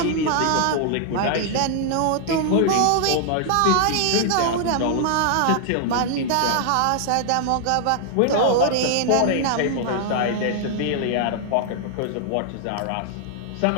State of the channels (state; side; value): different; both; correlation 0.00